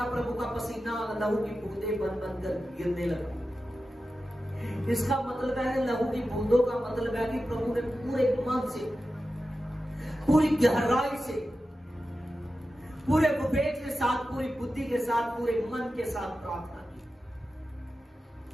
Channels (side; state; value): both; normal; correlation 0.92